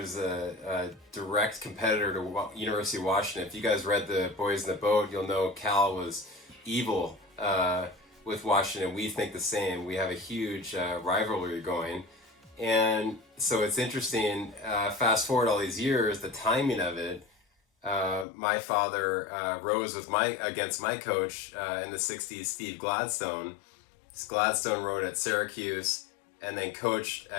a direct competitor to University of Washington. If you guys read the Boys in the Boat, you'll know Cal was evil with Washington. We think the same. We have a huge rivalry going. And so it's interesting, fast forward all these years, the timing of it. My father rows against my coach in the 60s, Steve Gladstone. Gladstone rowed at Syracuse and then coached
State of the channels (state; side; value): drops out; right; at 18.2 s